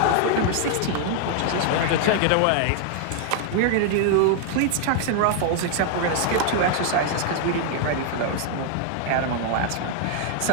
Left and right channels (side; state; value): both; different; correlation 0.00